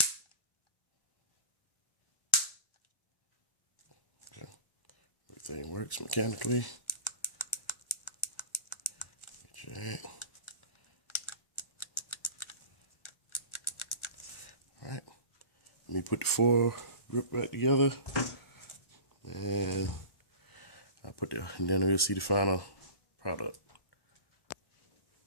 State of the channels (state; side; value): late; right; 1.1 ms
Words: Okay. Everything works mechanically. Okay. All right. Let me put the fore grip back together, and and then we'll see the final product.